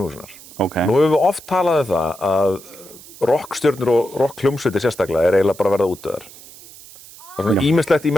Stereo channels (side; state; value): right; noise; hiss, 19 dB below the sound